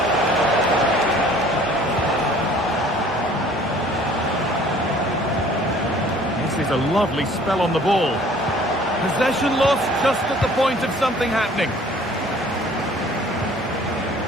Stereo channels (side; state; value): both; normal; correlation 0.53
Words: This is a lovely spell on the ball. Possession lost just at the point of something happening.